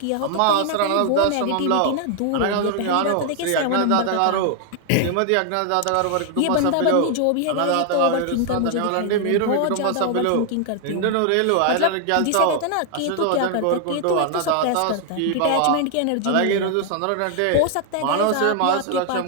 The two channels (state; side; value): different; both; correlation 0.00